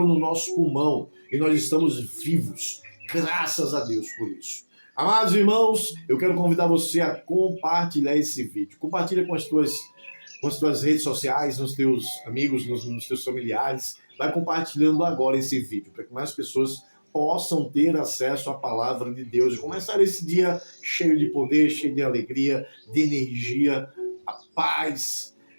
no nosso pulmão e nós estamos vivos. Graças a Deus por isso. Amados irmãos, eu quero convidar você a compartilhar esse vídeo. Compartilha com as tuas redes sociais, nos teus amigos, nos teus familiares. Vai compartilhando agora esse vídeo, para que mais pessoas possam ter acesso à palavra de Deus e começar esse dia cheio de poder, cheio de alegria, de energia, a paz,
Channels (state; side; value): inverted; both; correlation -1.00